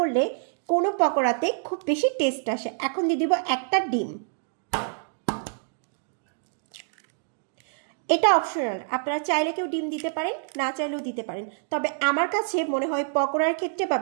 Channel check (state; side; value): silent; left; digital silence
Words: কোনো পকোড়াতে খুব বেশি টেস্ট আসে। এখন দিয়ে দিব একটা ডিম। এটা অপশনাল, আপনারা চাইলে কেউ ডিম দিতে পারেন, না চাইলেও দিতে পারেন। তবে আমার কাছে মনে হয় পকোড়ার ক্ষেত্রে বা